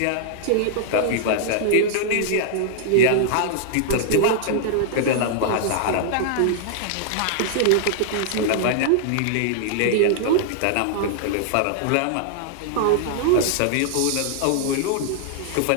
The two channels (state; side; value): different; both; correlation -0.01